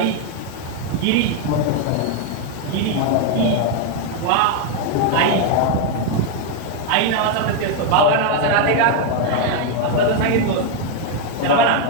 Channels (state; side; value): different; both; correlation 0.01